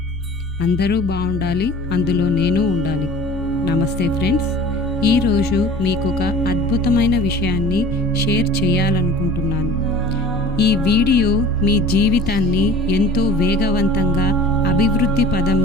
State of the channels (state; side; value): normal; both; correlation 0.43